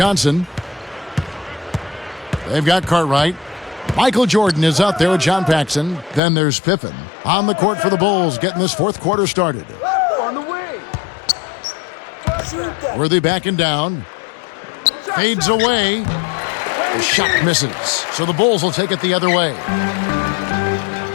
They've got Cartwright. Michael Jordan is out there with John Paxson. Then there's Pippen on the court for the Bulls, getting this fourth quarter started. On the way. Worthy backing down. Fades away. The shot misses. So the Bulls will take it the other way.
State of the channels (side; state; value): right; drops out; at 6.2 s